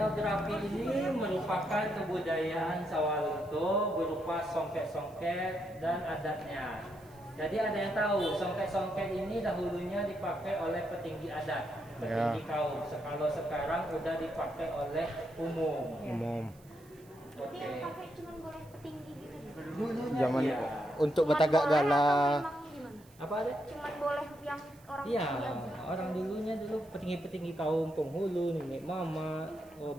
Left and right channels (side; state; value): right; noise; hiss, 27 dB below the sound